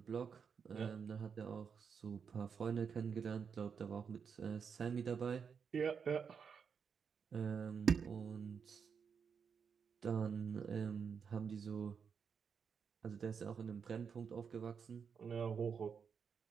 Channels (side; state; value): left; quieter; 6.5 dB